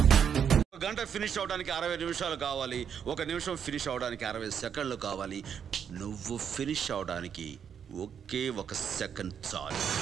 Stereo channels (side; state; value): left; quieter; 7.9 dB